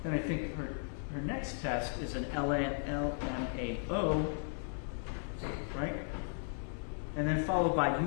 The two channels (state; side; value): silent; right; 54 dB below the other